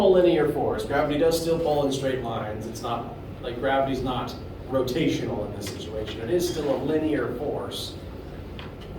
linear force. Gravity does still pull in straight lines. It's not, like, gravity's not rotational in this situation. It is still a linear force.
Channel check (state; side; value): identical; both; correlation 1.00